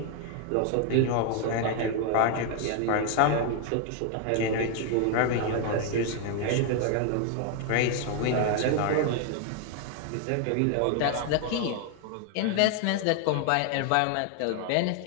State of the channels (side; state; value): both; different; correlation 0.00